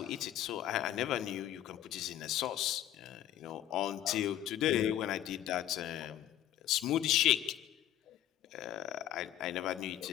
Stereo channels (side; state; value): right; quieter; 12.3 dB